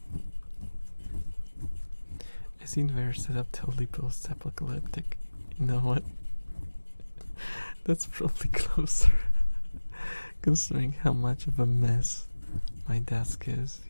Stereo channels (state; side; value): inverted; both; correlation -1.00